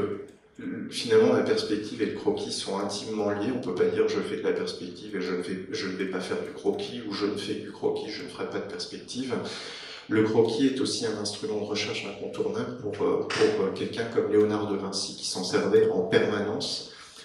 finalement la perspective et le croquis sont intimement liés, on ne peut pas dire je fais de la perspective et je ne vais pas faire du croquis, ou je ne fais du croquis, je ne ferai pas de perspective. Le croquis est aussi un instrument de recherche incontournable pour quelqu'un comme Léonard de Vinci, qui s'en servait en permanence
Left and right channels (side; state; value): both; identical; correlation 1.00